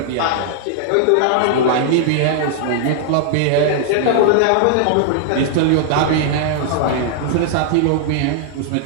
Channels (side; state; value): both; different; correlation -0.01